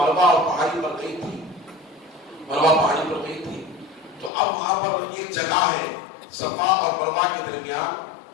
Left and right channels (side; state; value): right; drops out; at 4.3 s